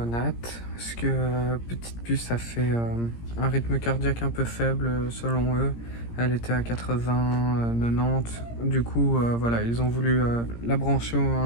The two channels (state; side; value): late; right; 17 ms